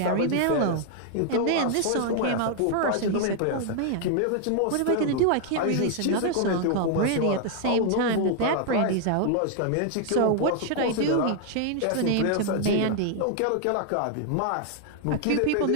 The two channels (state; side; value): different; both; correlation 0.00